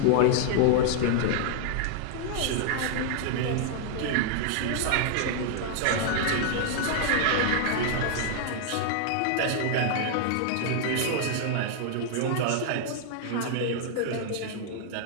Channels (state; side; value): different; both; correlation 0.00